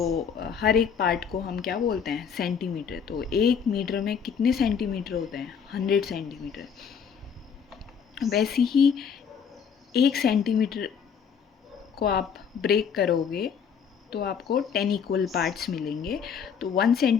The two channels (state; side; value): quieter; right; 7.0 dB